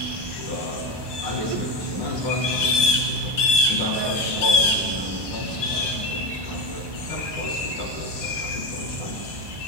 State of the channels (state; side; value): late; left; 1.2 ms